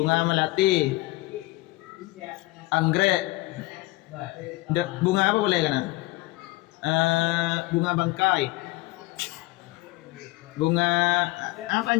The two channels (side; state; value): right; quieter; 20.7 dB